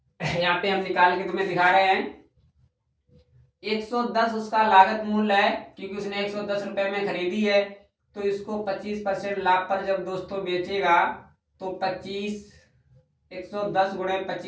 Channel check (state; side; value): identical; both; correlation 1.00